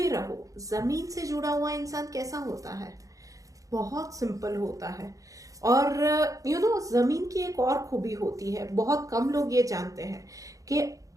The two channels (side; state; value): left; late; 0.16 ms